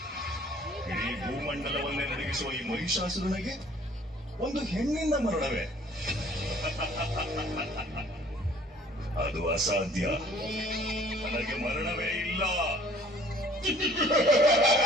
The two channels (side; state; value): both; normal; correlation 0.55